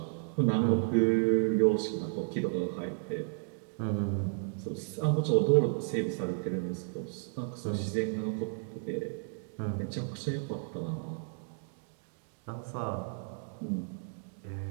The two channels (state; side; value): silent; left; 56 dB below the other